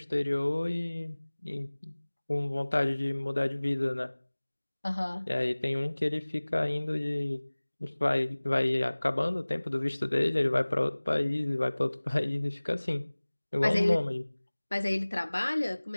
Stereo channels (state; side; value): inverted; both; correlation -1.00